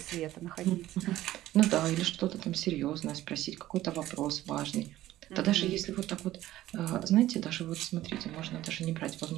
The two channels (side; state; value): left; quieter; 14.8 dB